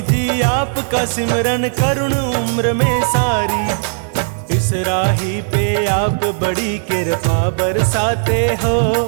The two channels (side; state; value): left; silent; digital silence